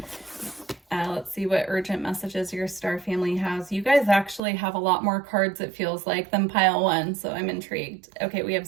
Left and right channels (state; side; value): drops out; left; at 4.4 s